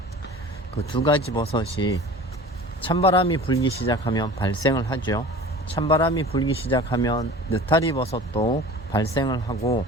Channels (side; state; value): both; normal; correlation 0.40